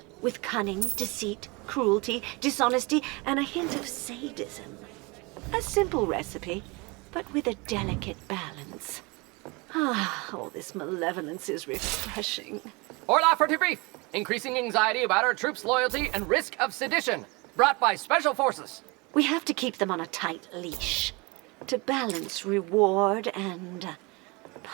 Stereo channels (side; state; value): left; quieter; 27.1 dB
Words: with cunning, deceit, cruelty, dishonesty, and a hint of sadism. A simple recipe, but with a delicate balance. Ah, all this malevolence is refreshing. Orla for debrief. Increasing anxiety about our troops' loyalty and risk of sedition. Brought by Special Forces. We have to keep them on a tight leash to balance reward and